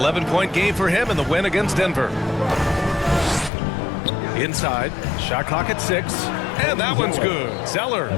game for him in the win against Denver. Inside. Shot clock at 6. And that one's good. Zeller.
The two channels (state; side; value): drops out; right; at 3.5 s